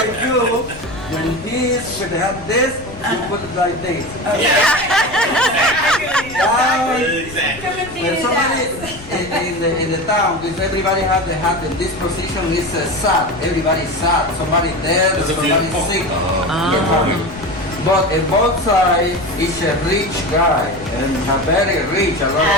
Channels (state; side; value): noise; left; rumble, 17 dB below the sound